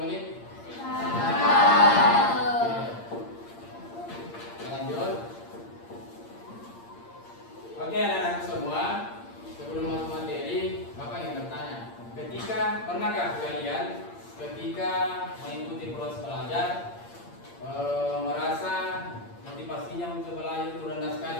menit? Lanjut. Oke anak-anak semua, sebelum masuk materi, Bapak ingin bertanya, pernahkah kalian ketika mengikuti proses belajar merasa motivasinya untuk belajar itu rendah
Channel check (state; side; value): late; right; 8.7 ms